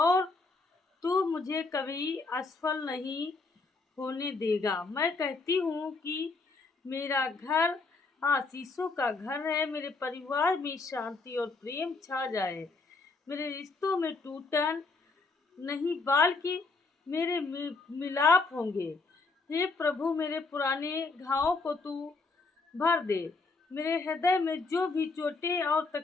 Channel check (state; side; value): quieter; right; 3.9 dB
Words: तू मुझे कभी असफल नहीं होने देगा। मैं कहती हूँ कि मेरा घर आशीषों का घर है। मेरे परिवार में शांति और प्रेम छा जाए। मेरे रिश्तों में टूटन नहीं बल्कि मेरे मिलाप होंगे। हे प्रभु, मेरे पुराने घावों को तू भर दे। मेरे हृदय में जो भी चोटें और